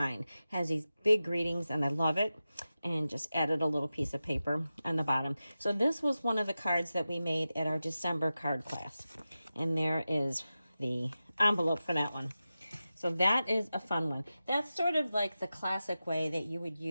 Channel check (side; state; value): both; inverted; correlation -0.93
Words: Has these big greetings, and I love it. And just added a little piece of paper on the bottom. So this was one of the cards that we made at our December card class. And there is the envelope for that one. So that is a fun one. That's sort of like the classic way that you would